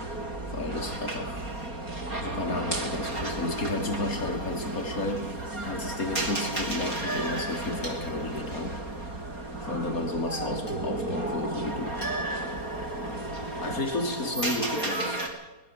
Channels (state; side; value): late; right; 4.3 ms